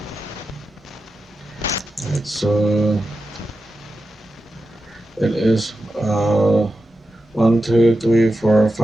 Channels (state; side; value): normal; both; correlation 0.91